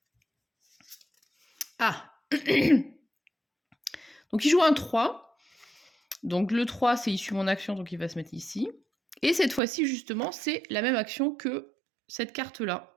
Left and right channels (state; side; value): drops out; left; at 9.6 s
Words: Ah. Donc, il joue un 3. Donc, le 3, c'est issu de mon action, donc il va se mettre ici. Et cette fois-ci, justement, c'est la même action que cette carte-là.